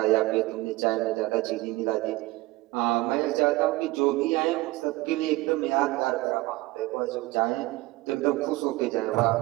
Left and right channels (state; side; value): quieter; left; 20.0 dB